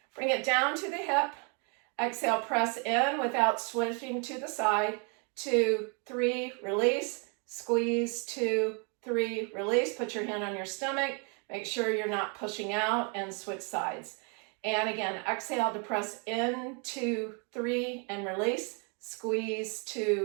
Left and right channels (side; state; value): left; quieter; 36.2 dB